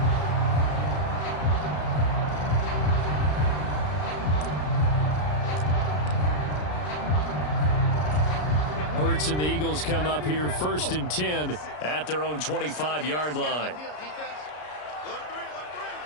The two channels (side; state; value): right; late; 33 ms